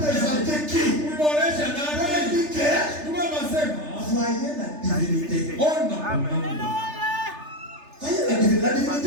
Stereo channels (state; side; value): late; left; 3.3 ms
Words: qui? Voyez la divinité. Voyez la divinité. La